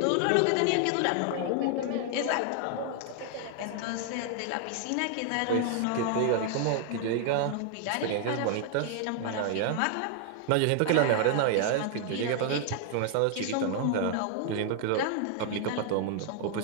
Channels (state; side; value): different; both; correlation 0.00